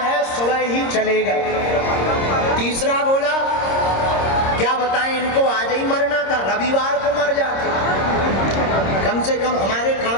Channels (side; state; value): right; late; 26 ms